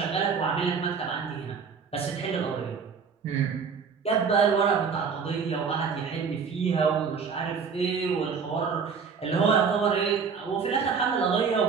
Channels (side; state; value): left; quieter; 5.9 dB